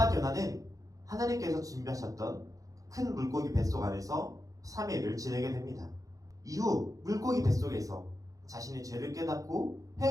요나는 하나님께서 준비하셨던 큰 물고기 뱃속 안에서 3일을 지내게 됩니다. 이후 물고기 뱃속에서 자신의 죄를 깨닫고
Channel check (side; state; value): left; late; 0.17 ms